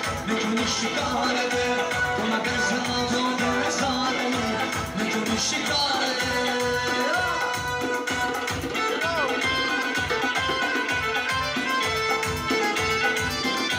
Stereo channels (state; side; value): identical; both; correlation 1.00